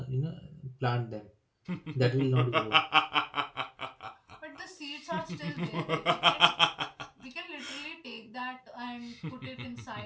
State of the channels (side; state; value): both; identical; correlation 1.00